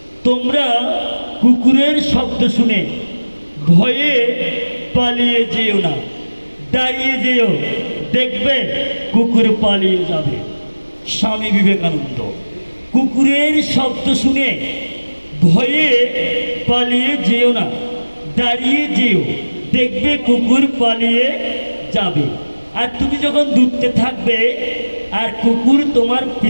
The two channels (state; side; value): inverted; both; correlation -1.00